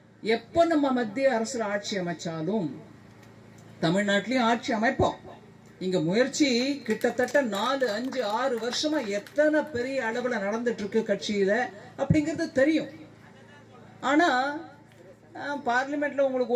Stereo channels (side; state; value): both; identical; correlation 1.00